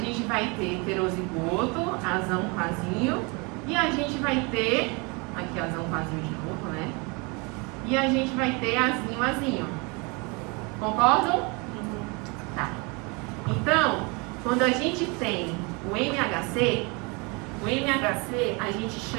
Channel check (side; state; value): left; quieter; 29.6 dB